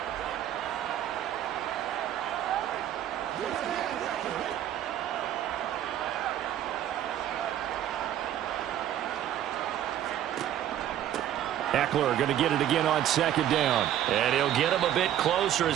Ekeler going to get it again on second down. And he'll get him a bit closer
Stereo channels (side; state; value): left; quieter; 11.4 dB